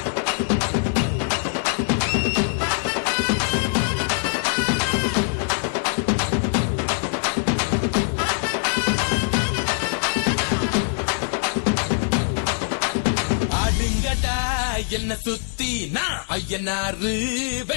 என்ன சுத்தி நான் ஐயனாரு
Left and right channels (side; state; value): right; silent; digital silence